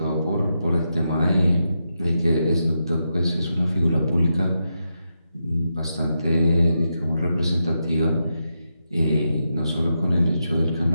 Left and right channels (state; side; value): inverted; both; correlation -0.85